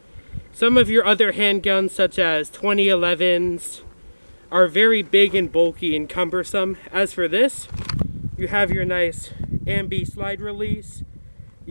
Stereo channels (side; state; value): both; inverted; correlation -1.00